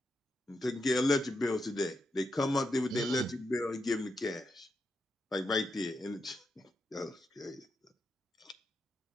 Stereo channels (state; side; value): normal; both; correlation 0.84